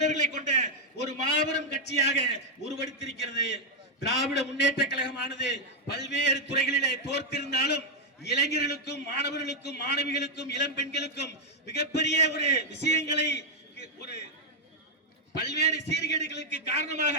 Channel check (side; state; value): both; normal; correlation -0.02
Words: கொண்ட ஒரு மாபெரும் கட்சியாக உருவெடுத்திருக்கிறது. திராவிட முன்னேற்ற கழகமானது பல்வேறு துறைகளிலே தோற்றிருந்தாலும் இளைஞர்களுக்கும் மாணவர்களுக்கும் மாணவிகளுக்கும் இளம் பெண்களுக்கும் மிகப்பெரிய ஒரு விஷயங்களை ஒரு பல்வேறு சீர்கேடுகளுக்கு காரணமாக